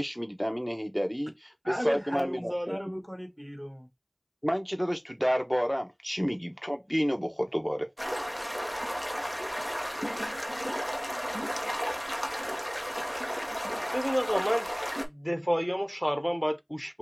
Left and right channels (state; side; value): identical; both; correlation 1.00